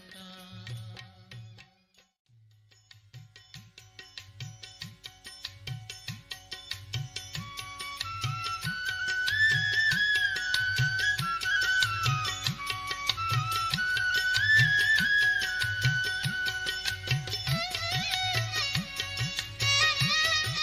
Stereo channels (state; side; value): identical; both; correlation 1.00